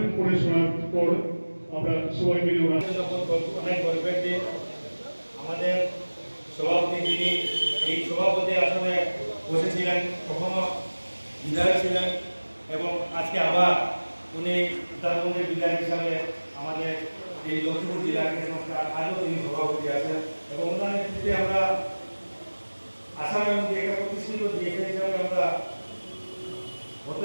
পড়ে শোনার পর আমরা সবাই মিলে অনেক গর্বের দিন। আমাদের সভাপতি যিনি এই সভাপতি আসনে বসেছিলেন, কখনো বিধায়ক ছিলেন এবং আজকে আবার উনি উত্তরবঙ্গের বিধায়ক হিসাবে আমাদের এই লক্ষ্মীপুর জেলা ক্রীড়া সংস্থার আজও তিনি সভাপতি আছেন এবং ওনার নেতৃত্বে আমরা আসাম এবং একটা প্রতিষ্ঠিত ডিএসএ হিসাবে আমরা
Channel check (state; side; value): inverted; both; correlation -1.00